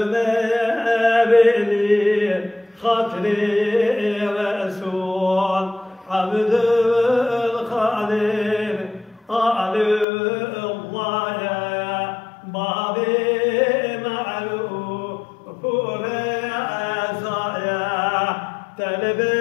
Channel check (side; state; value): right; drops out; at 10.1 s